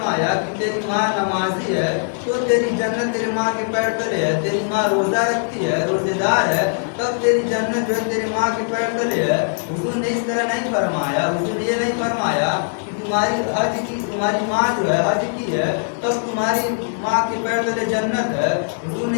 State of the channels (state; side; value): silent; right; 65 dB below the other